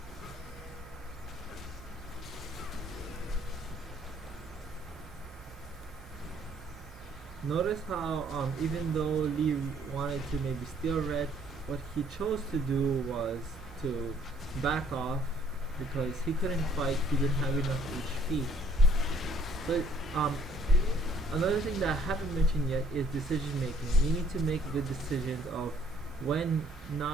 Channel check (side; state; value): both; normal; correlation 0.61